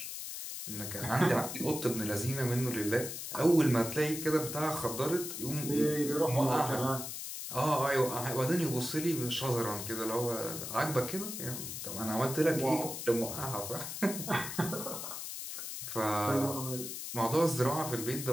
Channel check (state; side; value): noise; left; hiss, 7 dB below the sound